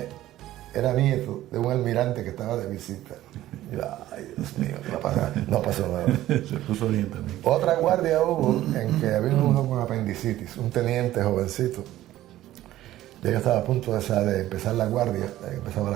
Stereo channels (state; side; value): quieter; left; 14.5 dB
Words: era nieto de un almirante que estaba de visita. Y yo, ay Dios mío, no pasó nada. Se puso bien también. Otra guardia hubo en que había uno con apendicitis, un teniente jovencito. Yo ya estaba a punto de empezar la guardia, empezaba a